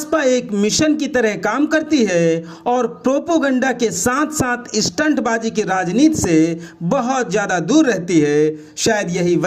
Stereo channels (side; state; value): both; identical; correlation 1.00